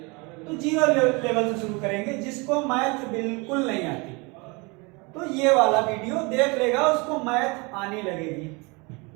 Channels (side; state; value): left; quieter; 28.0 dB